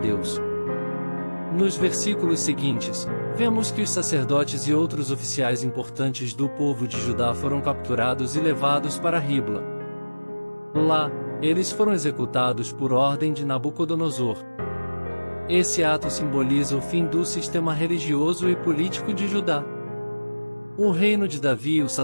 Nos versículos seguintes, vemos que os sacerdotes e outros oficiais importantes do povo de Judá foram capturados e levados para Ribla. Lá, eles foram executados por ordem de Nabucodonosor. Esse ato simboliza o fim do sistema religioso e político de Judá. O reino de Davi e o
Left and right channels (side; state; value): both; inverted; correlation -1.00